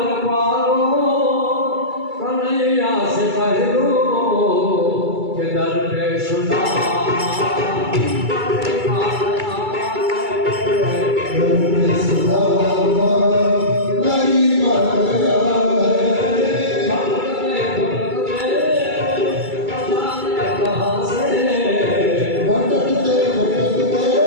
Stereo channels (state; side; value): late; left; 2.3 ms